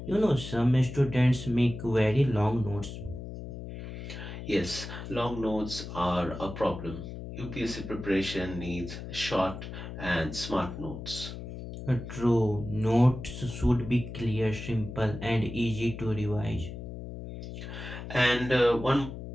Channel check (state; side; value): noise; left; hum, 9 dB below the sound